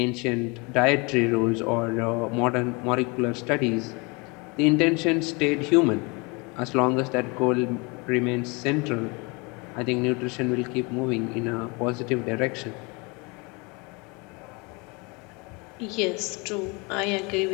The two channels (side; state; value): right; quieter; 28.6 dB